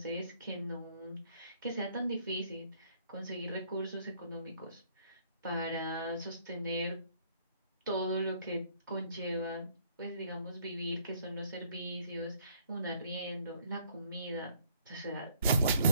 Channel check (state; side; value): inverted; both; correlation -0.64